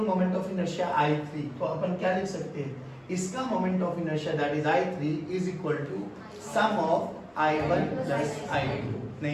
moment of inertia I3, तो अपन क्या लिख सकते हैं, इसका moment of inertia that is I3 is equal to sum of I1 plus I2।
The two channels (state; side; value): identical; both; correlation 1.00